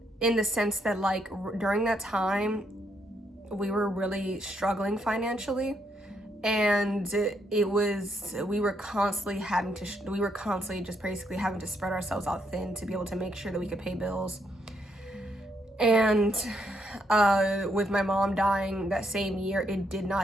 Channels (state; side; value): normal; both; correlation 0.75